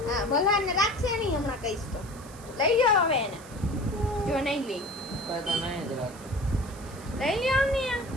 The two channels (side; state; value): right; noise; hiss, 20 dB below the sound